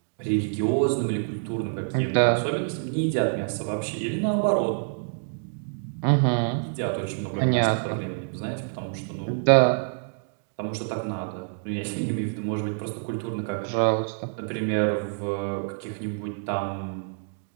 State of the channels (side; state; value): left; silent; digital silence